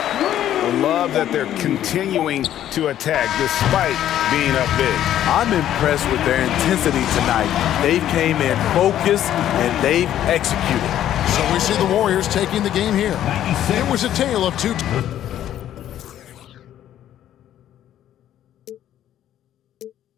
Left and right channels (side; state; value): right; quieter; 11.6 dB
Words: love that they're continuing to attack despite being up big. I'm impressed with their intensity tonight. They came in focused and they've executed. So we see the Warriors taking the game here. It was a tale of two.